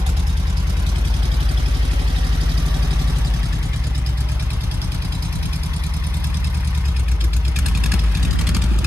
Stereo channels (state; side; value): normal; both; correlation 0.94